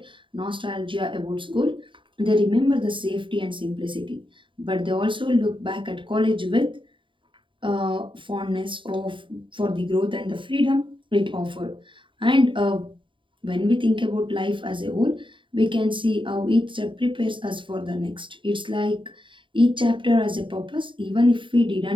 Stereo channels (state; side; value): late; left; 0.24 ms